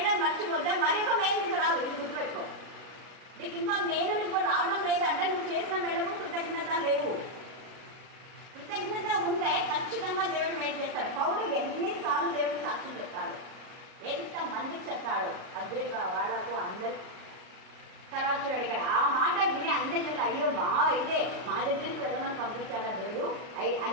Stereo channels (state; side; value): late; left; 38 ms